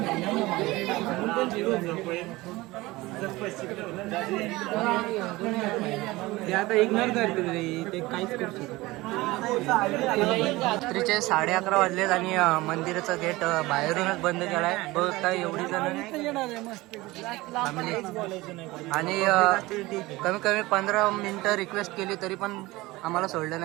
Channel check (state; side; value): quieter; left; 20.2 dB